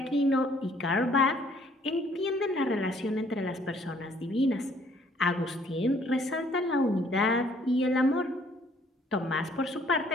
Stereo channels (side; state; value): both; normal; correlation 0.62